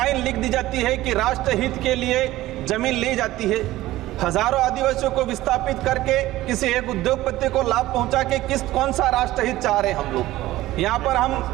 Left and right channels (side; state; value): left; quieter; 16.4 dB